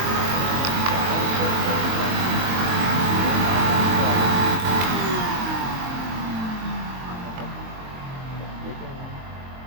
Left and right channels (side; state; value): left; late; 22 ms